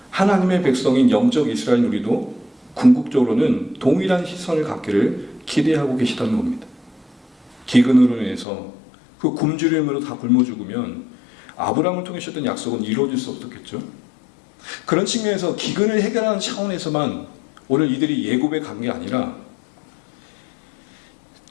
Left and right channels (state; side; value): drops out; right; at 8.5 s